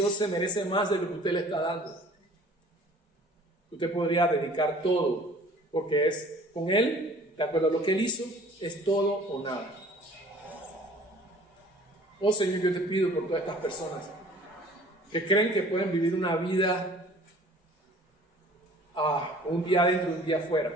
se merece más de lo que usted le está dando. Usted podría dedicar todo, porque es con Él, de acuerdo a lo que Él hizo, es todo o nada. Oh Señor, yo te pido por todas estas personas que creen que pueden vivir una vida un día adentro y un día afuera,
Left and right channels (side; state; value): both; normal; correlation 0.50